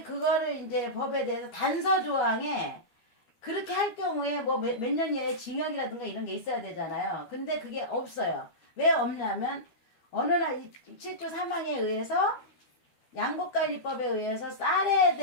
그거를 이제 법에 대해서 단서 조항에 그렇게 할 경우에 뭐 몇 년 이하의 징역이라든가 이런 게 있어야 되잖아요. 근데 그게 없어요. 왜 없냐면 어느 날 7조 3항에 의해서 양곡관리법에 의해서 쌀에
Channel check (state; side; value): late; right; 13 ms